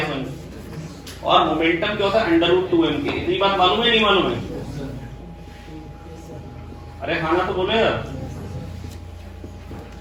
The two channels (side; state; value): both; identical; correlation 1.00